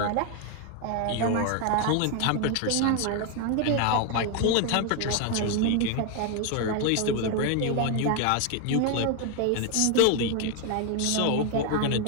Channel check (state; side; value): different; both; correlation 0.01